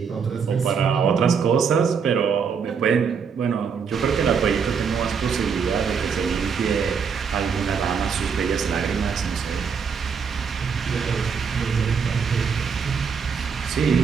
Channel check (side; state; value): left; quieter; 6.2 dB